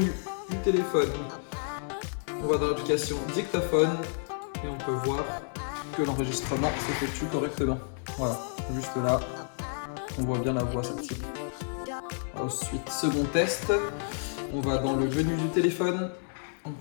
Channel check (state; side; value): silent; right; 58 dB below the other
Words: du téléphone, on va dans l'application dictaphone et on peut voir que l'enregistrement s'effectue correctement. Voilà, juste là, on voit bien la voix s'active. Ensuite, second test, on va dans le menu du téléphone,